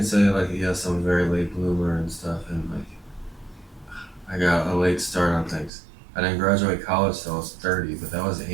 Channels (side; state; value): left; drops out; at 5.7 s